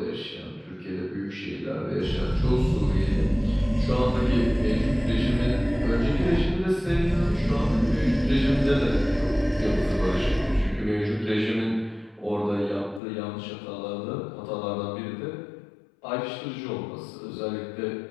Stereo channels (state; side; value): drops out; right; at 13.0 s